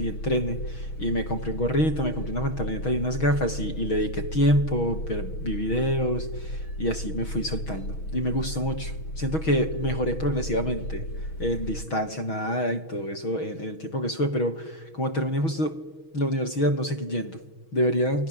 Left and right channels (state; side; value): late; right; 6.2 ms